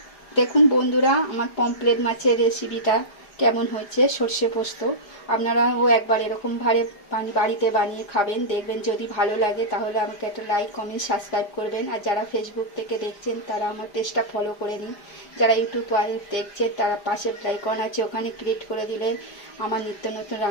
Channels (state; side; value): late; right; 5.0 ms